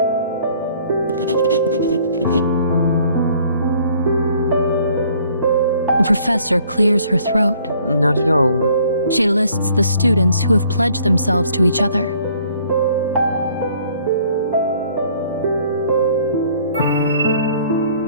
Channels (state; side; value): inverted; both; correlation -0.59